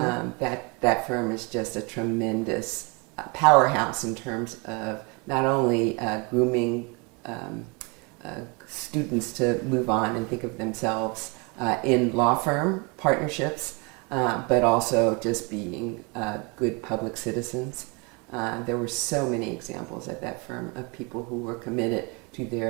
That firm is just a tremendous powerhouse in terms of not only grooming students to move on and think of themselves in law firm partnerships, but also just being good public citizens. There were so many examples at that firm of people who were committed to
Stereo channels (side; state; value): left; quieter; 30.7 dB